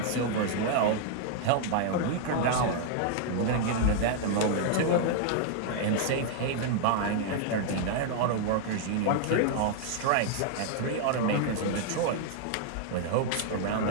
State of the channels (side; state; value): both; different; correlation 0.00